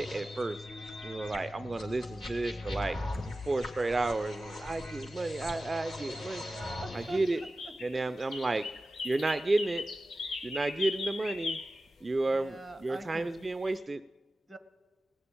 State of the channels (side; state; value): both; normal; correlation 0.95